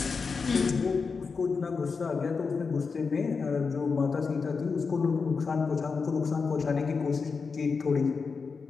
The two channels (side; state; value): right; quieter; 5.0 dB